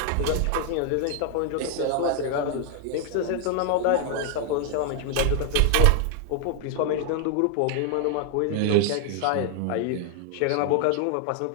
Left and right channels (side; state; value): both; different; correlation 0.00